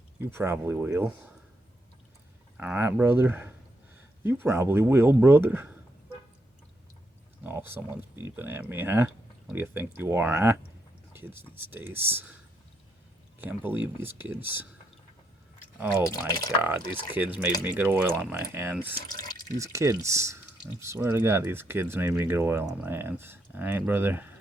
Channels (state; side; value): normal; both; correlation 0.78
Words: You probably will. Alright, brother? You probably will, brother. Oh, someone's beeping at me, huh? What do you think you are, huh? Kids these days. Can't believe these kids. Oh my god, these kids made me get oil on my hands. These kids. I swear to god, these kids made me get oil on my hands. Alright, brother.